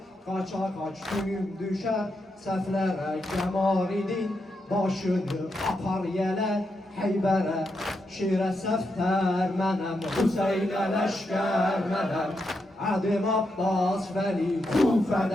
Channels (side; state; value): both; normal; correlation 0.84